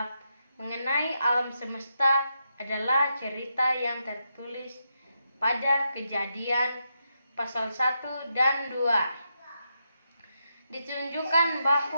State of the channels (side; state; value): both; inverted; correlation -0.83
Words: mengenai alam semesta adalah cerita yang tertulis pada Kejadian pasal 1 dan 2. Ditunjukkan